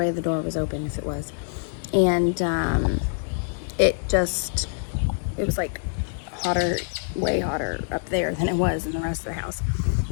the door was open if it was. And it was like hotter, way hotter up there than it was in the rest of the house.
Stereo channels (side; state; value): right; silent; digital silence